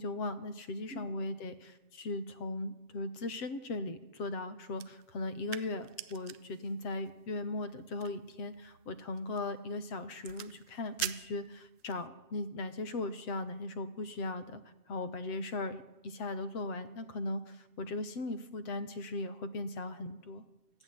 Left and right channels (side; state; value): right; late; 7.5 ms